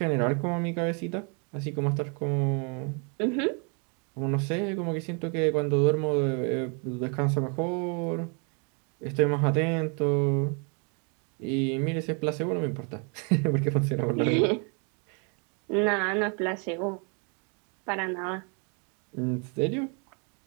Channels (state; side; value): quieter; left; 37.0 dB